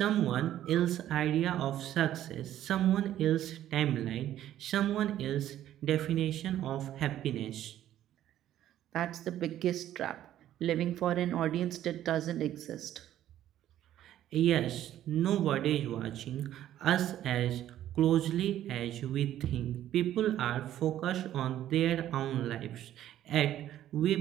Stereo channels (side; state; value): left; quieter; 12.2 dB